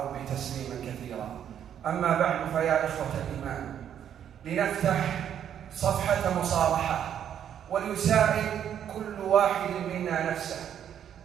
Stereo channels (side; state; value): left; quieter; 9.4 dB